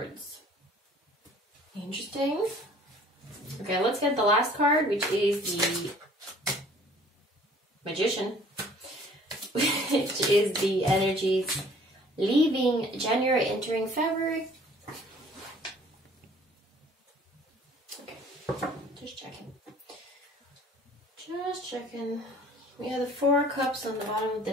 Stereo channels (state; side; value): normal; both; correlation 0.53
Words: Interesting. Okay, let's get the last card, which is the Magician. Which is the energies leaving January, entering February. Okay, just checking. Just checking. We have the Four Cups on the bottom of the